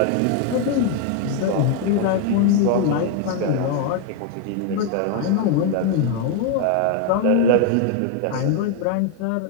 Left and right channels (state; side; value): different; both; correlation 0.00